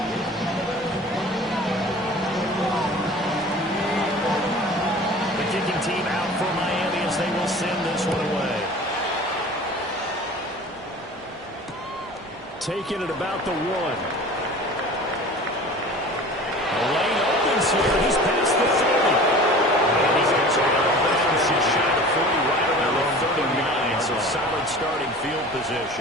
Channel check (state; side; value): normal; both; correlation 0.41